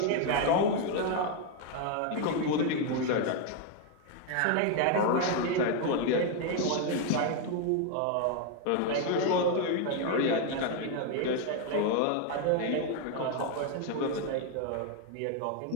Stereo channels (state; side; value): different; both; correlation 0.01